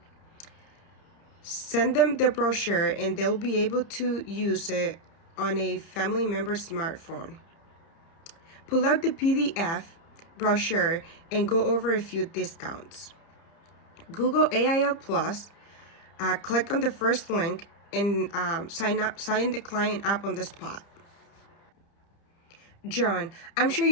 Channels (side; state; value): right; late; 30 ms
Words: Send them the brochure and they'll be able to use it on a family member's smartphone. Pull out the PDF brochure and go over a few discounts. Google AIL Plus, click on the first link and sign the client up on the spot. John, I'm sure